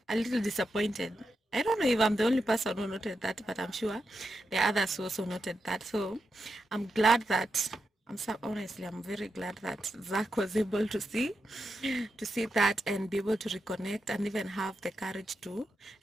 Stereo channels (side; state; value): both; normal; correlation 0.87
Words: a little disappointed. I don't know if I'm the only person who noted that, but I'm sure the others who also noted that. So I'm glad that honestly, I'm very glad that Zach was able to see that and be able to reconnect and even have the courage to